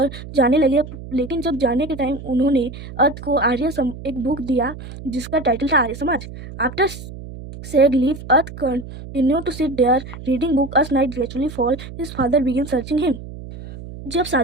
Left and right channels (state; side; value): noise; right; hum, 13 dB below the sound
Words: जाने लगे, लेकिन जब जाने के टाइम उन्होंने अर्थ को एक बुक दिया जिसका टाइटल था Arya Samaj. After said leave, Earth continued to sit there reading book. As night gradually fall, his father began searching him. जब